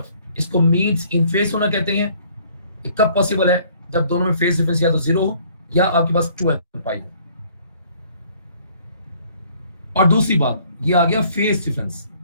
इसको मीन्स इन फेस होना कहते हैं। ये कब पॉसिबल है, जब दोनों में फेस डिफरेंस या तो जीरो हो या आपके पास 2n पाई हो। और दूसरी बात, ये आ गया फेस डिफरेंस।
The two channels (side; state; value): both; inverted; correlation -0.59